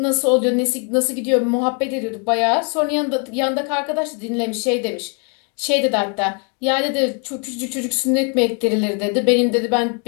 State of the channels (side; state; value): right; quieter; 38.7 dB